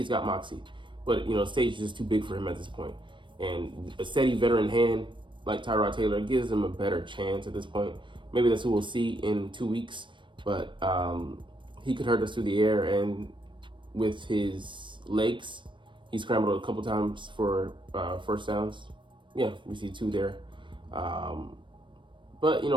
got moxie, but the stage is just too big for him at this point. And a steady veteran hand like Tyrod Taylor gives him a better chance at this point. Maybe that's who we'll see in 2 weeks, but he could hurt us through the air, and with his legs, he scrambled a couple times for first downs. Yeah, we see 2 there. But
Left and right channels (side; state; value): left; late; 0.24 ms